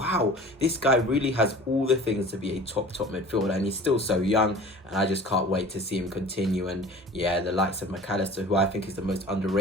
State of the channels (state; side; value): normal; both; correlation 0.42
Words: this guy really has all the things to be a top midfielder, and he's still so young, and I just can't wait to see him continue. And yeah, the likes of Mac Allister, who I think is the most